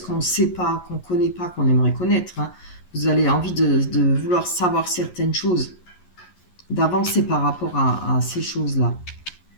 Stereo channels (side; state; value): right; late; 11 ms